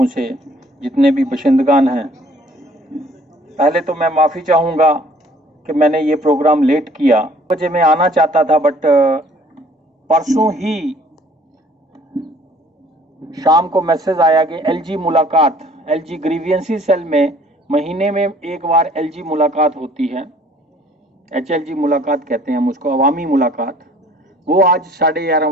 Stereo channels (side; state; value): both; normal; correlation 0.56